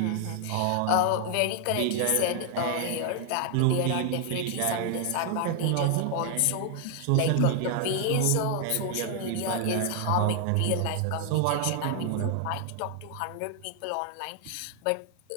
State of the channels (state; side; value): different; both; correlation 0.00